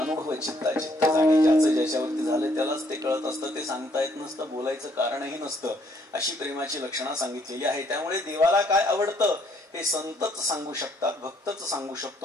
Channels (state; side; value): normal; both; correlation 0.67